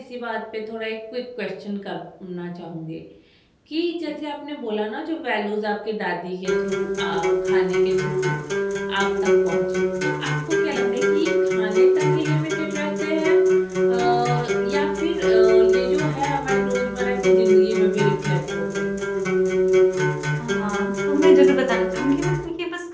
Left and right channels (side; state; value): both; identical; correlation 1.00